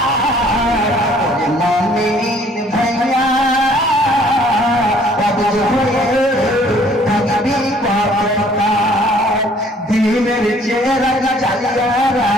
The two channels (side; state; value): both; normal; correlation 0.58